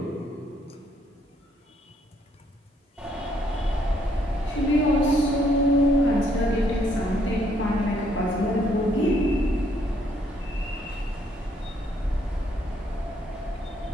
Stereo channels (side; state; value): both; normal; correlation 0.69